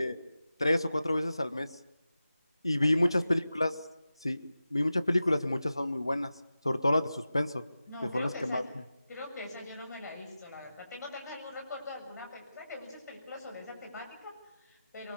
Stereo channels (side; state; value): both; inverted; correlation -0.94